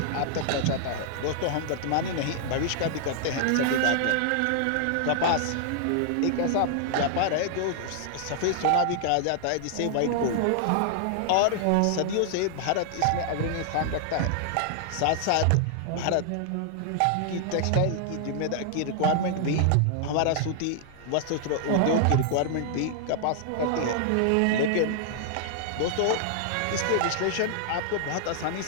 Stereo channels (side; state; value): both; different; correlation -0.01